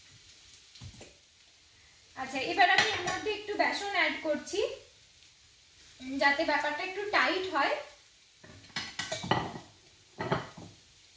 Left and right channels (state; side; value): identical; both; correlation 1.00